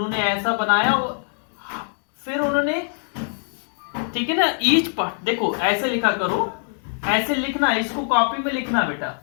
ऐसा बनाया, फिर उन्होंने, ठीक है ना, ईच पार्ट, देखो ऐसे लिखा करो, ऐसे लिखना, इसको कॉपी में लिखना बेटा।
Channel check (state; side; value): silent; right; digital silence